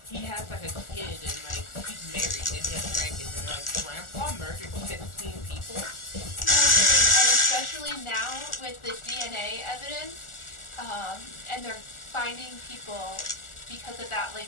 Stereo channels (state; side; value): late; right; 1.4 ms